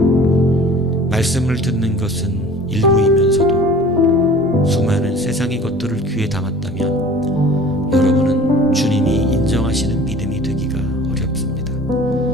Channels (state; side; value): normal; both; correlation 0.45